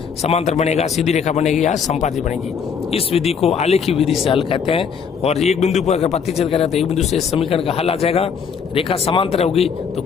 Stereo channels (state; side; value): quieter; right; 6.5 dB